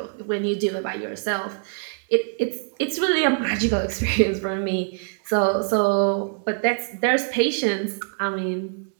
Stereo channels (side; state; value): left; silent; 63 dB below the other